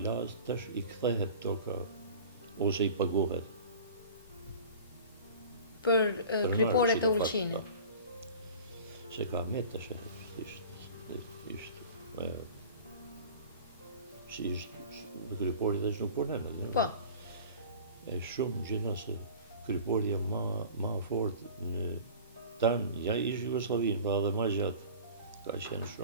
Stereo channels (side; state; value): both; inverted; correlation -0.41